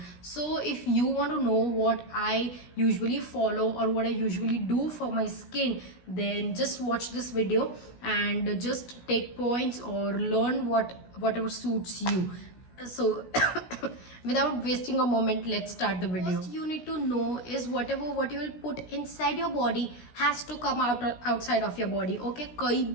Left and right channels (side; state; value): right; late; 16 ms